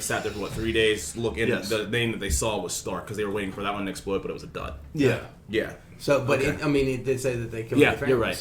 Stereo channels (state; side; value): identical; both; correlation 1.00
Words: there for 3 days looking. Yes. The name that they saw was Stark because they were waiting for that one to explode, but it was a dud. Yeah. So, but it did say that they killed their family. You're right.